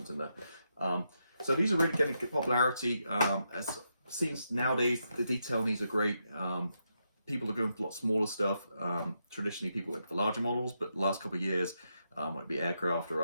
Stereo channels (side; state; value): both; inverted; correlation -0.83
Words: in there. So these are really getting popularity. As seems nowadays, the detail in these are great. People are going for a lot smaller stuff. Traditionally, people went for larger models, but the last couple of years, whether it be aircraft or